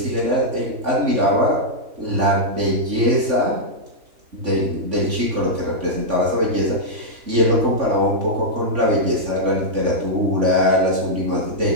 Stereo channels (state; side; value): late; left; 3.5 ms